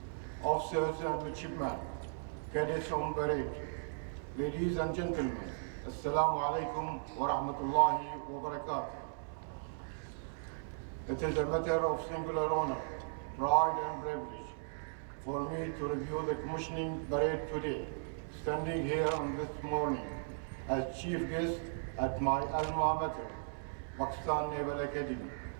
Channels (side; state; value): left; silent; digital silence